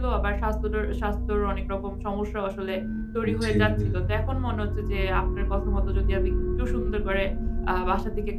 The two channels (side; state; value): both; identical; correlation 1.00